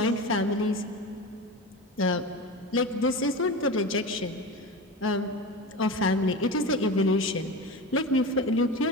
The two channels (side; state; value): both; normal; correlation 0.26